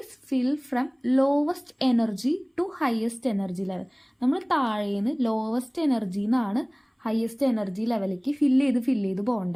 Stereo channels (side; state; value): both; identical; correlation 1.00